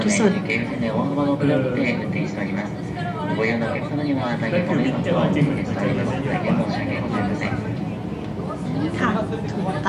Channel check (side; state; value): both; identical; correlation 1.00